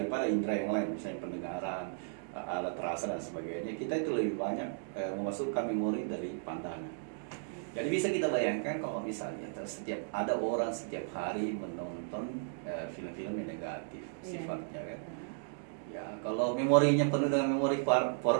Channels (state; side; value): silent; left; digital silence